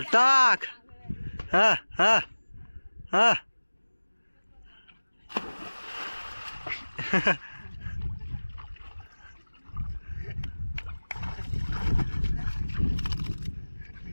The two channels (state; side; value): inverted; both; correlation -1.00